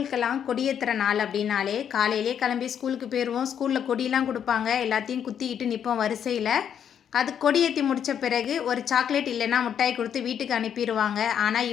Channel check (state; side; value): quieter; right; 8.7 dB